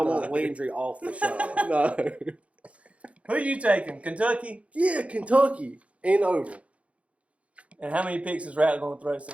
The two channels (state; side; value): late; left; 0.064 ms